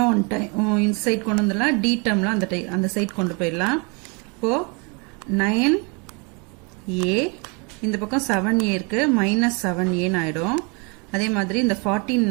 ஒன் டைம் இந்த சைட் கொண்டு வந்துடலாம். D டேர்ம்லாம் அந்த சைட் கொண்டு போயிடலாம். இப்போ 9A இந்த பக்கம் 7A இருக்கு மைனஸ் 7A ஆயிடும். அதே மாதிரி இந்த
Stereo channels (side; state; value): left; quieter; 32.2 dB